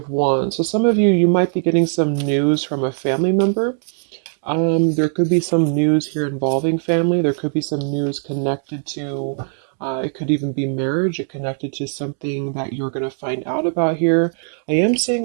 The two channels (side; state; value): left; silent; digital silence